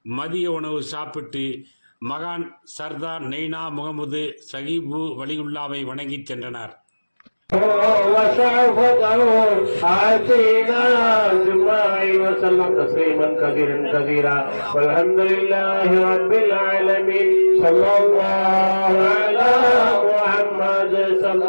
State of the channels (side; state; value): both; inverted; correlation -1.00